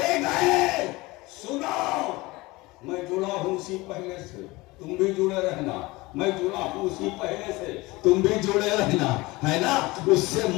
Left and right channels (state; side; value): quieter; right; 21.8 dB